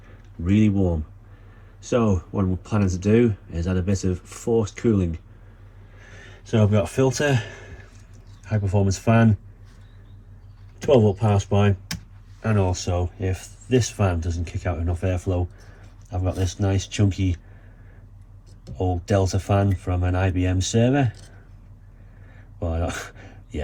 really warm. So what I'm planning to do is add a bit of forced cooling. So I've got a filter, high performance fan, 12 volt power supply, and also if this fan doesn't kick out enough airflow, I've got this nice chunky old Delta fan from an IBM server. Well,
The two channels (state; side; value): identical; both; correlation 1.00